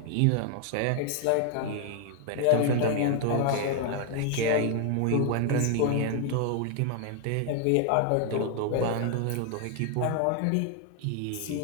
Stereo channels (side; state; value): both; different; correlation 0.00